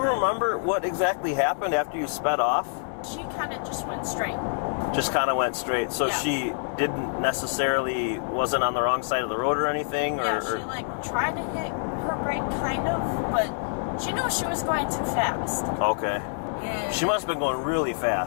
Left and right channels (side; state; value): right; silent; 61 dB below the other